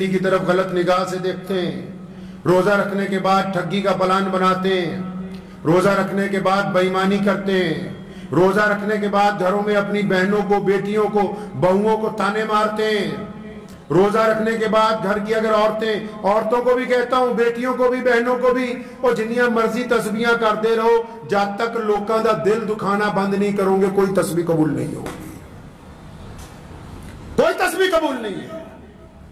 کی طرف غلط نگاہ سے دیکھتے ہیں, روزہ رکھنے کے بعد ٹھگی کا پلان بناتے ہیں, روزہ رکھنے کے بعد بے ایمانی کرتے ہیں, روزہ رکھنے کے بعد گھروں میں اپنی بہنوں کو, بیٹیوں کو, بہوؤں کو تانے مارتے ہیں, روزہ رکھنے کے بعد گھر کی اگر عورتوں کو بھی کہتا ہوں, بیٹیوں کو بھی, بہنوں کو بھی, اور جنیاں مرضی تسبیحاں کرتے رہو, جب تک لوگوں کا دل دکھانا بند نہیں کرو گے کوئی تسبیح قبول نہیں ہوگی, کوئی تسبیح قبول نہیں ہے.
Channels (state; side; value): identical; both; correlation 1.00